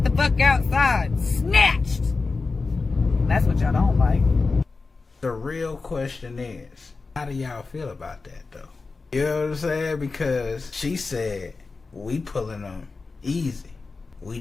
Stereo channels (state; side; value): quieter; right; 4.1 dB